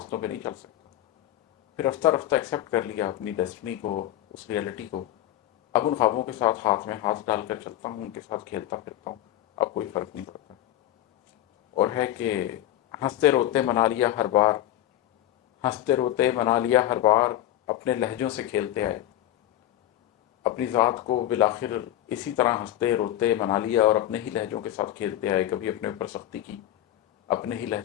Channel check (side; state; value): right; quieter; 13.2 dB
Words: پہ نہیں چل سکتا، پھر رفتہ رفتہ ایکسیپٹ کر لیا اپنی ڈیسٹنی کو، اس ریئلٹی کو۔ اب ان خوابوں کے ساتھ ہاتھ میں ہاتھ ڈال کر چلتا ہوں، ان کے ساتھ کھیلتا پھرتا ہوں، اب کوئی فرق نہیں پڑتا۔ اور ہے کہ ہنستے روتے منا لیا ہر بار، ہنستے روتے منا لیا ہر بار، اپنے لہجوں سے کھیلتے آئے، اپنی ذات کو بالآخر اسی طرح ہنستے روتے منا لیا اور اپنے ہی لہجوں کے ساتھ کھیلتے آئے، کبھی اپنے اوپر سختی کی، اپنے ہی